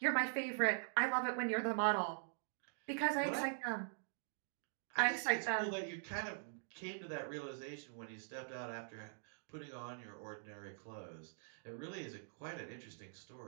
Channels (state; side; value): silent; left; digital silence